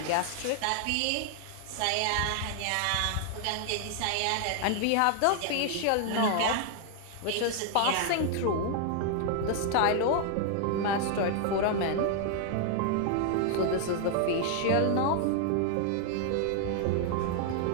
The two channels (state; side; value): different; both; correlation 0.00